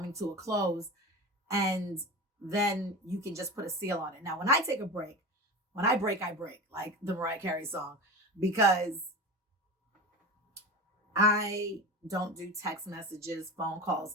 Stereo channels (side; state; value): both; normal; correlation 0.28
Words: to a close. And then you can just put a seal on it. Now, when I take a break, when I break, like the Mariah Carey song, because I don't do text messages, phone